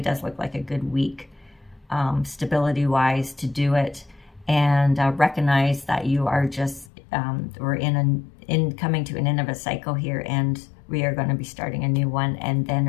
does look like a good week, stability-wise, to do it. And recognize that you are just, we're coming to an end of a cycle here, and we are going to be starting a new one, and then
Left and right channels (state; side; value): drops out; right; at 6.9 s